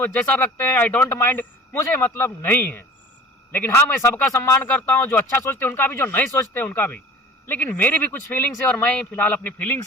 जैसा रखते हैं, आई डोंट माइंड, मुझे मतलब नहीं है। लेकिन हाँ, मैं सबका सम्मान करता हूँ, जो अच्छा सोचते हैं उनका भी, जो नहीं सोचते उनका भी। लेकिन मेरी भी कुछ फीलिंग्स है, और मैं फिलहाल अपनी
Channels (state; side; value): normal; both; correlation 0.42